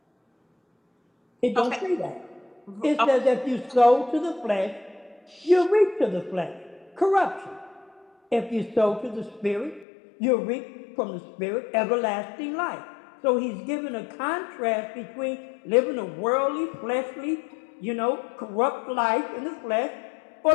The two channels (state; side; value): drops out; right; at 9.9 s